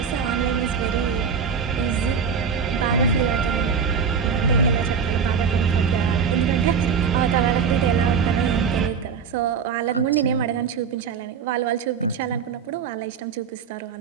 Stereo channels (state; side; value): quieter; left; 6.4 dB